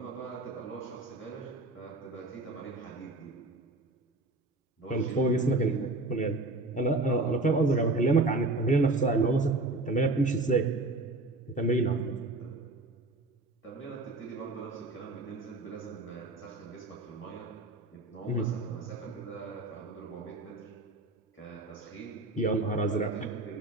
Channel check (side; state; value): left; quieter; 3.1 dB